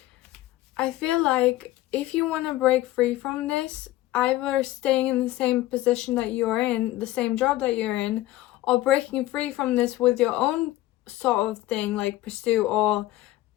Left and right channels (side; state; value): right; quieter; 16.1 dB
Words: I feel like if you want to break free from this, either staying in the same position that you're in, the same job that you're in, or breaking free from this with your own sort of thing, like pursue, or